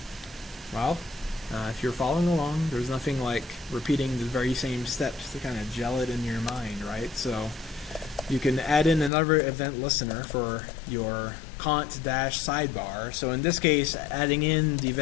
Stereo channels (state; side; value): drops out; right; at 9.1 s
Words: Well, if you're following along, there's nothing like repeating the very same steps to kind of gel it in your mind, right? So you can add in another event listener for your cont-sidebar. So in this case, adding in the